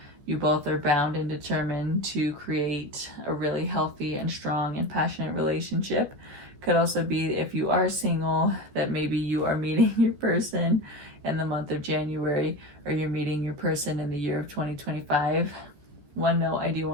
you both are bound and determined to create a really healthy and strong and passionate relationship. Could also be, if you are single, that maybe you are meeting your person in the month of January, or you're meeting your person in the year of 2025. One note I do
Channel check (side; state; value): left; late; 14 ms